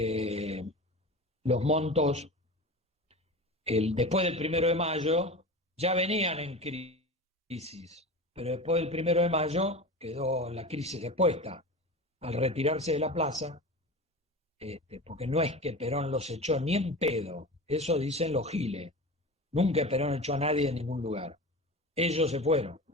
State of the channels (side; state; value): both; normal; correlation 0.31